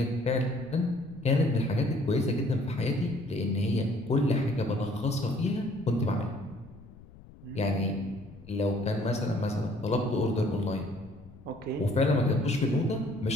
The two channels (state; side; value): noise; left; rumble, 21 dB below the sound